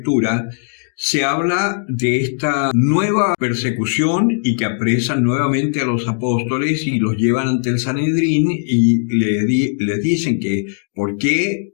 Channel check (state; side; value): silent; right; 67 dB below the other